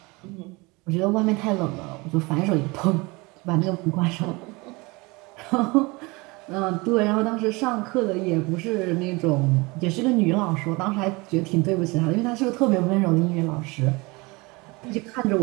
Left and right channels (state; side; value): quieter; left; 25.2 dB